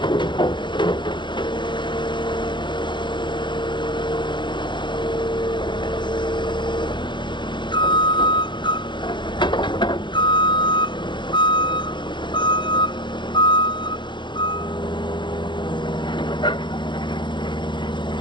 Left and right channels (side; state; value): right; late; 0.22 ms